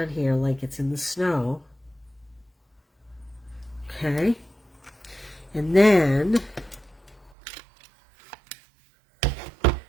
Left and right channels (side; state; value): left; drops out; at 7.3 s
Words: here like it's in the snow. Okay. And then I